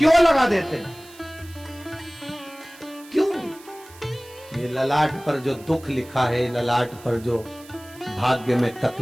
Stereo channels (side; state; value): right; noise; hiss, 22 dB below the sound